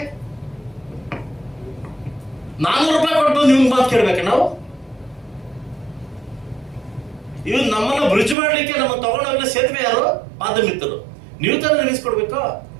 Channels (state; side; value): drops out; left; at 8.3 s